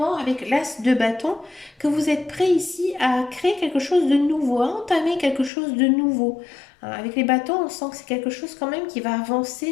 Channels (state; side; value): drops out; right; at 5.5 s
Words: avec l'as de bâton que vous êtes prêt ici à créer quelque chose de nouveau, à entamer quelque chose de nouveau. Avec les bâtons, on sent que c'est quelque chose quand même qui va